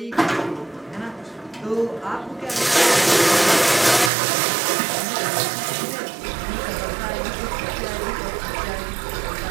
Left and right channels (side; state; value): left; drops out; at 4.1 s